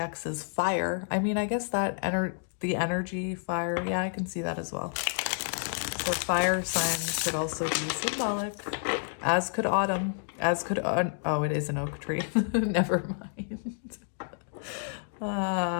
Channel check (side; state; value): right; silent; digital silence